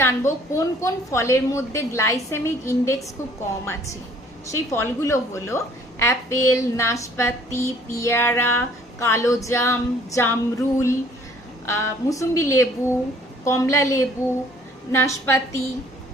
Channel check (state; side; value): normal; both; correlation 0.57